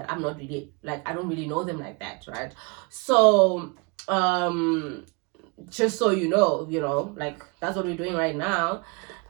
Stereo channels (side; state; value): left; quieter; 31.2 dB